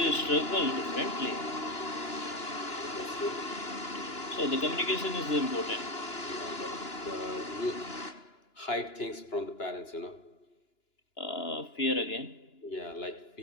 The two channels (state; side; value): late; right; 2.9 ms